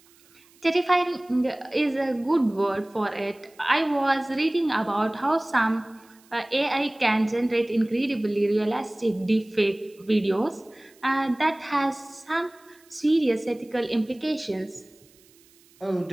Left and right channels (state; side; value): noise; right; hiss, 29 dB below the sound